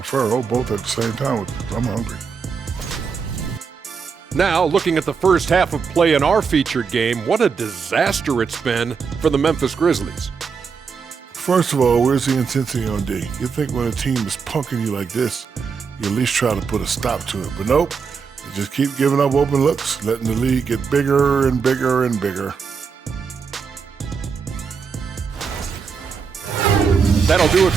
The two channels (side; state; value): left; quieter; 5.8 dB